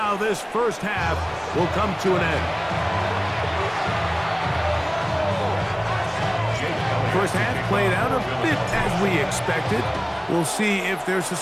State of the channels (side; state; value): both; identical; correlation 1.00